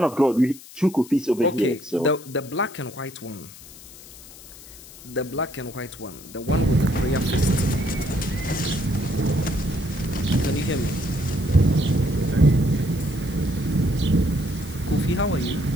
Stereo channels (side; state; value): left; noise; hiss, 18 dB below the sound